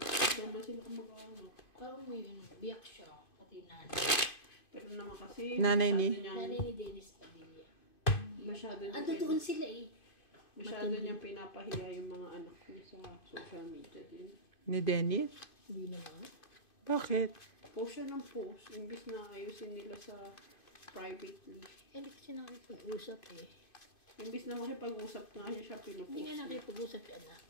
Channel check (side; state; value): right; late; 2.5 ms